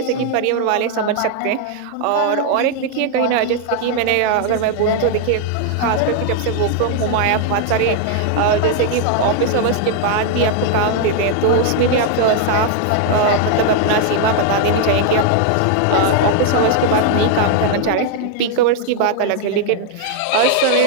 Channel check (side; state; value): both; different; correlation 0.00